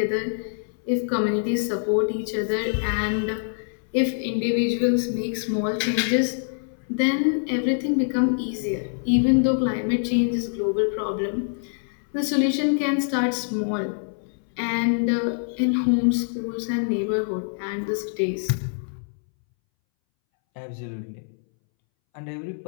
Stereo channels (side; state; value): right; silent; 62 dB below the other